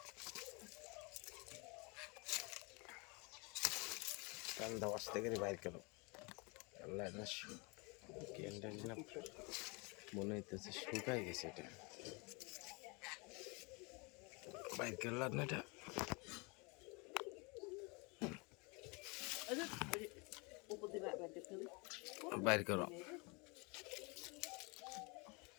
কান্দা আসতে গেলে বাইর করো। আল্লাহ না ক্যান্ডারি না মনে হইতেছে শুকাই গেছে, এটা বাইর করলাম না, এটা বাইর করো।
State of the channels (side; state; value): right; quieter; 29.6 dB